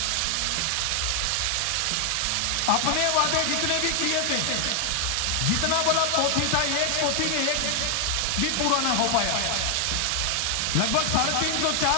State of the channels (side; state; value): both; different; correlation 0.00